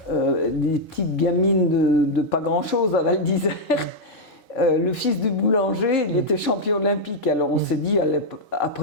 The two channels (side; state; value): both; normal; correlation -0.03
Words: des petites gamines de pas grand-chose à Val d'Isère, le fils du boulanger, il était champion olympique. Alors on s'est dit,